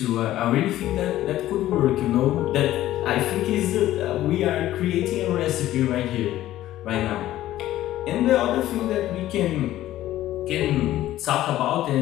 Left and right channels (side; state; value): right; quieter; 14.1 dB